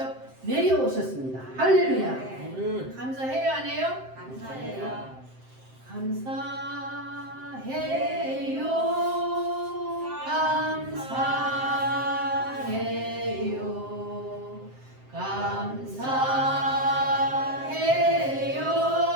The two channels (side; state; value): left; late; 7.7 ms